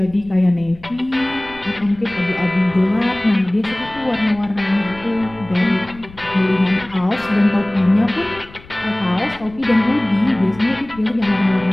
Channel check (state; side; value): noise; left; rumble, 21 dB below the sound